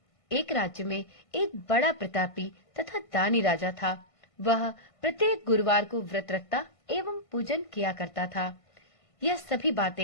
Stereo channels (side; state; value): right; late; 1.5 ms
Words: एक राज्य में एक बड़ा प्रतापी तथा दानी राजा था। वह प्रत्येक गुरुवार को व्रत रखता एवं पूजन किया करता था। यह सभी